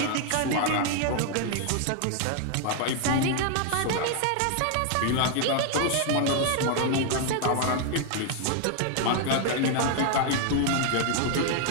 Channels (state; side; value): different; both; correlation 0.00